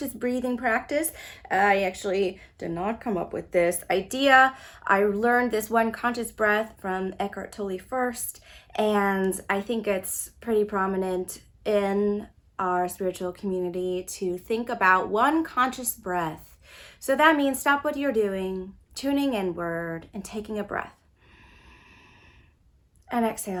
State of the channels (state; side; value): identical; both; correlation 1.00